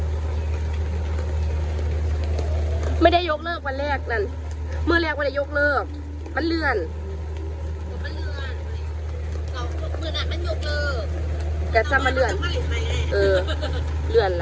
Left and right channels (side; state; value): both; identical; correlation 1.00